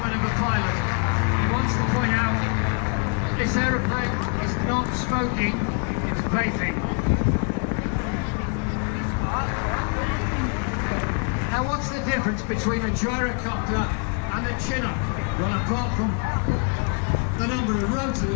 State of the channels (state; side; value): quieter; right; 36.9 dB